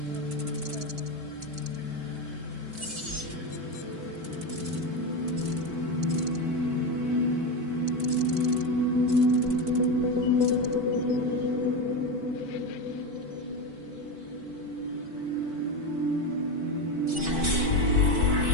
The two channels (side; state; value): left; late; 4.5 ms